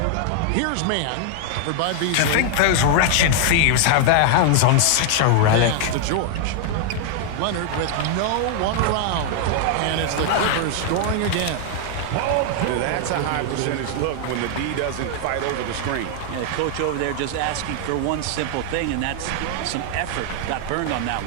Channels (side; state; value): both; different; correlation 0.00